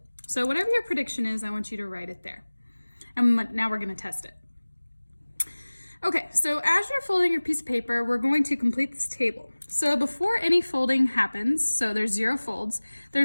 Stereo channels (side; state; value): both; inverted; correlation -1.00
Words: So whatever your prediction is, I want you to write it there. And now we're going to test it. Okay, so as you're folding your piece of paper, we're going to complete this table. So before any folding happens, so there's 0 folds,